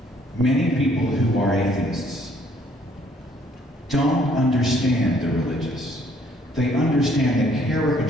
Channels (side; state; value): both; normal; correlation 0.64